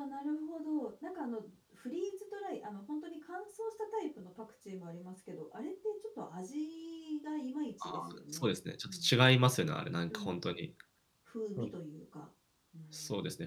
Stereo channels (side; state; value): both; identical; correlation 1.00